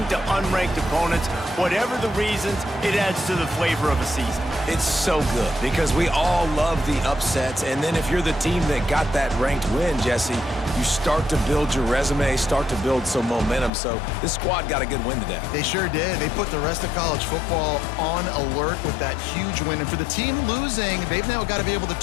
to unranked opponents. Whatever the reasons, it adds to the flavor of a season. It's so good because we all love the upsets, and then if you're the team that got that ranked win, Jesse, you start to build your resume, start to build some momentum. So this squad got a good win today. They sure did. They put the rest of college football on alert with that huge win. And for the team losing, they've now got to be able to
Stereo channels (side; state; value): right; drops out; at 13.7 s